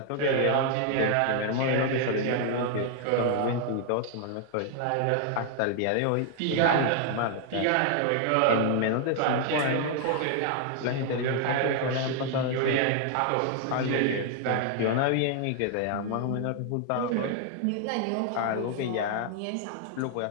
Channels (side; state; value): both; different; correlation 0.00